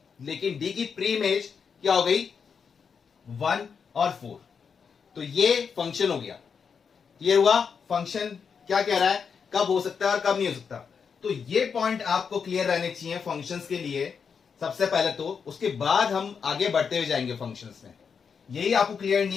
लेकिन डी की प्री इमेज क्या हो गई, 1 और 4, तो ये फंक्शन हो गया। ये हुआ फंक्शन क्या कह रहा है, कब हो सकता है और कब नहीं हो सकता। तो ये पॉइंट आपको क्लियर रहने चाहिए फंक्शंस के लिए सबसे पहले, तो उसके बाद हम आगे बढ़ते हुए जाएंगे फंक्शंस में। यही आपको क्लियर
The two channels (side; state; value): right; quieter; 6.2 dB